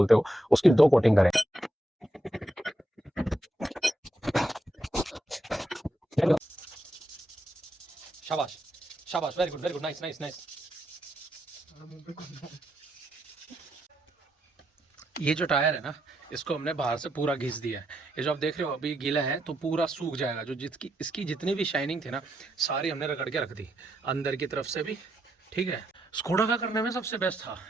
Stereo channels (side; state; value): both; normal; correlation 0.81